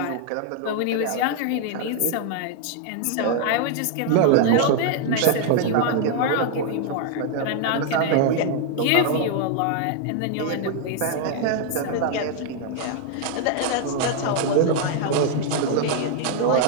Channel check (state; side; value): different; both; correlation 0.00